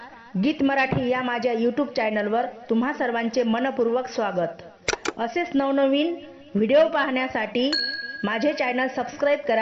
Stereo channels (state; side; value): identical; both; correlation 1.00